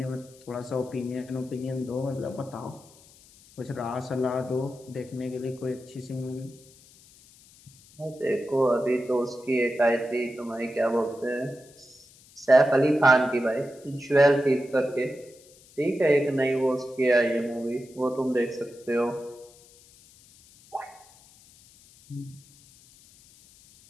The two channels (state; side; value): noise; left; hiss, 25 dB below the sound